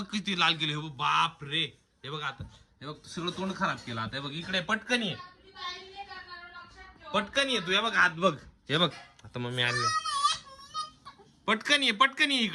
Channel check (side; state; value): both; identical; correlation 1.00